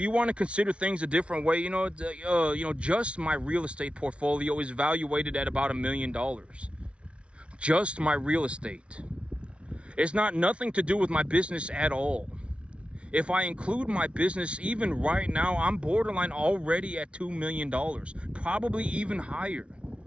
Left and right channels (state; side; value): late; left; 0.060 ms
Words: want to consider things a different way, just my real estate portfolio is valuated at about $1 million. Just my real estate. It's nothing to do with my business at all. If I include my business, even right now, I'm borderline already at $2 million, probably even higher.